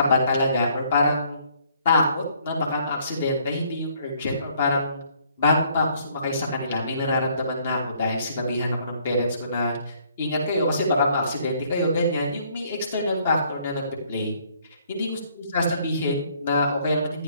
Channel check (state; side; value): inverted; both; correlation -0.64